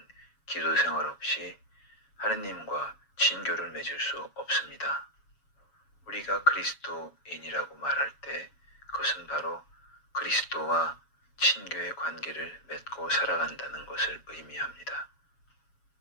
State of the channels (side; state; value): right; late; 7.2 ms